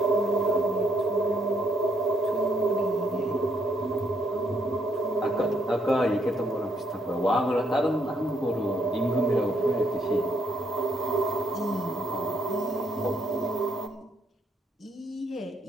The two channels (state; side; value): normal; both; correlation 0.73